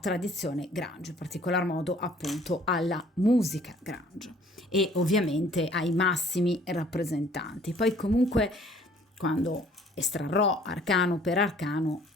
Grange, in particolar modo appunto alla musica Grange e ovviamente ai massimi rappresentanti. Poi comunque quando estrarrò arcano per arcano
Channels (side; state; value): both; normal; correlation 0.56